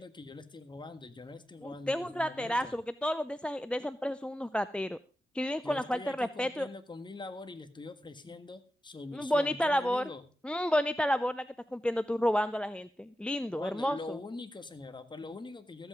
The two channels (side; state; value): both; normal; correlation 0.91